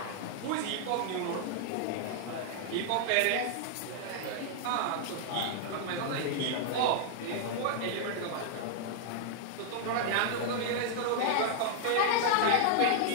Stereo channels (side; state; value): both; different; correlation 0.00